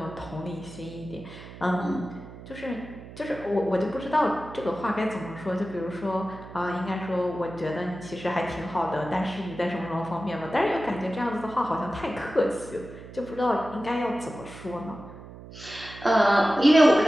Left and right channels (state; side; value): noise; right; hum, 15 dB below the sound